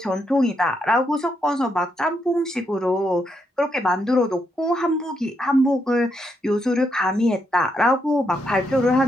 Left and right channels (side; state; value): both; normal; correlation 0.79